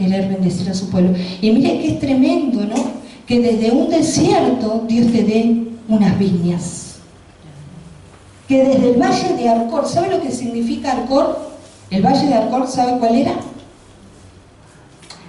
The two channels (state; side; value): identical; both; correlation 1.00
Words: bendecir a su pueblo. Y mire que es tremendo, ¿no? Que desde un desierto Dios te dé unas viñas. Que desde el valle de Arcor, ¿sabe lo que significa Arcor? El valle de Arcor, ¿sabe cuál era?